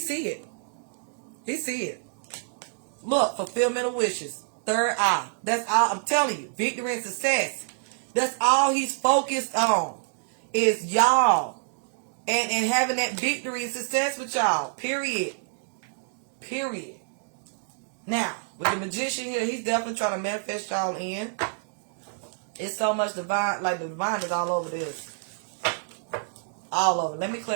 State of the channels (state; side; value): silent; left; digital silence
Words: it. He see it. Look, fulfillment of wishes. Third eye. That's all I'm telling you. Victory and success. That's all he's focused on. Is y'all. And having that victory and success with y'all. Period. Period. Now, with the magician here, he's definitely trying to manifest y'all in. It's so much divine. Like the divine is all over this. All over. Let me